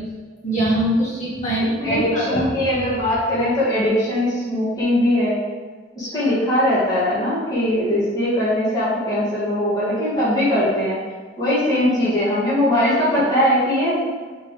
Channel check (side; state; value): both; normal; correlation 0.39